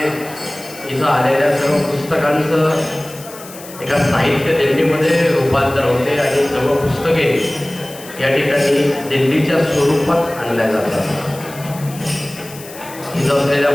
इथं आलेल्या सर्व पुस्तकांचं एका साहित्य दिंडीमध्ये रूपांतर होते आणि सर्व पुस्तके या ठिकाणी दिंडीच्या स्वरूपात आणल्या जातात. इथं असलेल्या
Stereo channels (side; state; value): left; noise; hiss, 17 dB below the sound